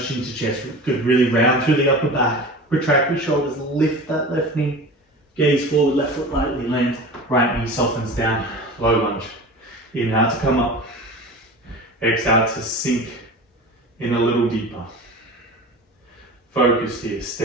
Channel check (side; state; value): both; normal; correlation 0.34